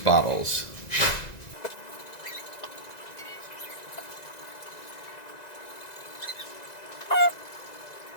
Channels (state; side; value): late; right; 1.9 ms